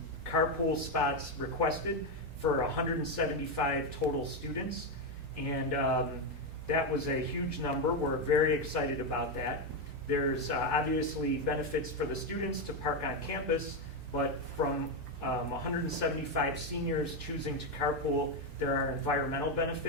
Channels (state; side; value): normal; both; correlation 0.06